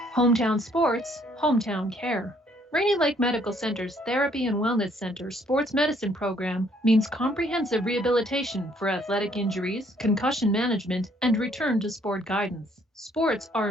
Hometown sports, hometown care. Rainy Lake Medical Center's Therapy and Wellness Center Sports Medicine Program means comprehensive rehabilitation for athletic injuries, concussion management, and return to sport guidance. Sports are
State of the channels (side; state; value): both; normal; correlation 0.65